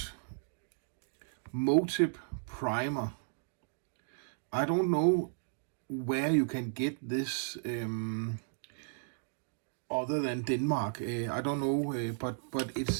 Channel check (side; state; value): left; silent; digital silence